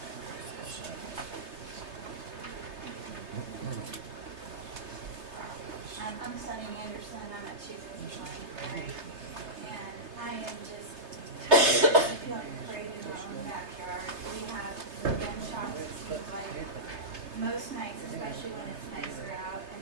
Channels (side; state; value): left; late; 3.3 ms